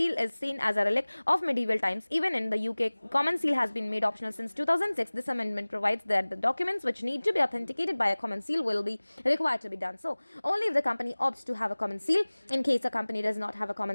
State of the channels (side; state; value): both; inverted; correlation -1.00